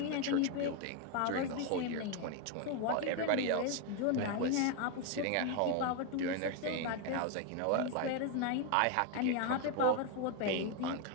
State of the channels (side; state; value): both; different; correlation 0.01